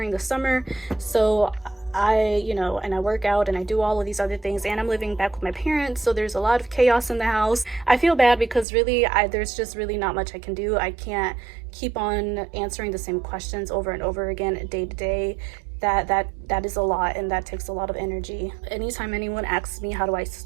the summer. So and I work out and I do all of these other things, and I'm living back with my parents, so there's a lot of chaos in the house. I feel bad because really there's just really not much I can do. I can't keep on answering the same questions over and over again day to day. That is a lot, and that takes a lot of energy. Anytime anyone asks me how do I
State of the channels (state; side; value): drops out; left; at 8.7 s